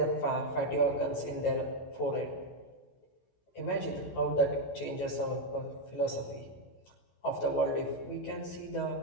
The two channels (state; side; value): late; right; 16 ms